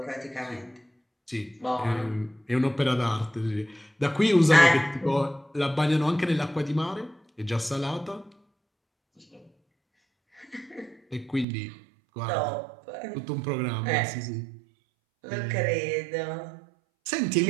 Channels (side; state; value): left; drops out; at 11.5 s